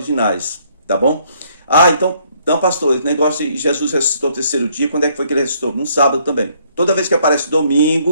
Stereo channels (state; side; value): inverted; both; correlation -0.66